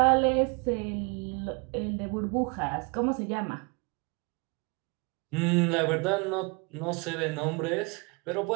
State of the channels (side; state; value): left; quieter; 30.8 dB